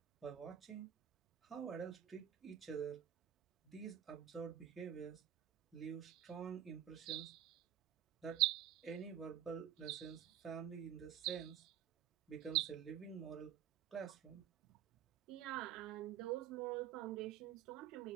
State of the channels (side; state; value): left; quieter; 10.5 dB